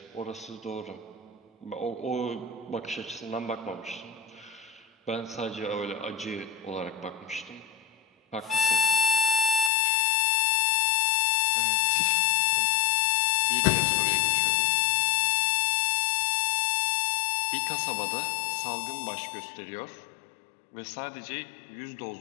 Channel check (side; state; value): right; drops out; at 9.7 s